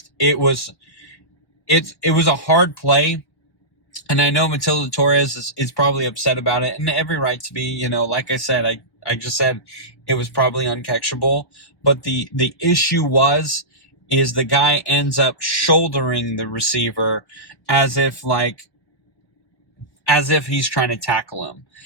was a hard play. And I know Matilda Torres is probably upset about it, and every right to be. Like I said, I just said it was probably uncatchable. But the issue is the guy ends up shouldering the receiver as if he's trying to tackle him.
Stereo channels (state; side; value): late; right; 1.2 ms